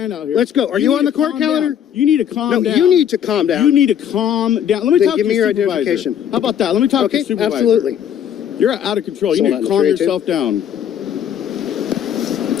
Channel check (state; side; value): quieter; right; 9.3 dB